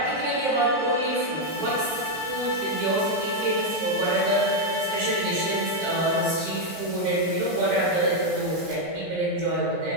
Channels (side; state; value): left; late; 16 ms